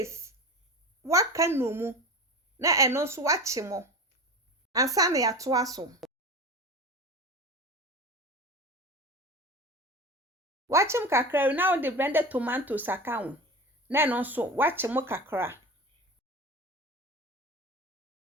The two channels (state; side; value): normal; both; correlation 0.30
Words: Waka no mu. Na eno so wachi mu. Ansa na ya to aso. Wachim kakra now the blended tomatoes account. Na eno so wachi mu kakra.